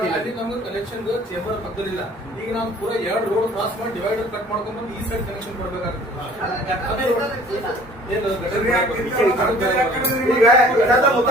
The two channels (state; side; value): normal; both; correlation 0.52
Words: ಕನೆಕ್ಷನ್ ಚೇಂಬರ್ ಪಕ್ಕದಲ್ಲಿಲ್ಲ ಈಗ ನಾವು ಪೂರ 2 ರೋಡ್ ಕ್ರಾಸ್ ಮಾಡಿ ಡಿವೈಡರ್ ಕಟ್ ಮಾಡ್ಕೊಂಡು ಈ ಸೈಡ್ ಕನೆಕ್ಷನ್ ಕೊಡ್ಬೇಕಾಗ್ತದೆ